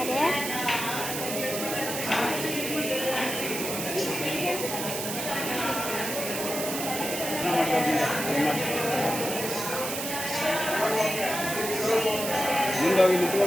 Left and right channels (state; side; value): noise; right; hiss, 4 dB below the sound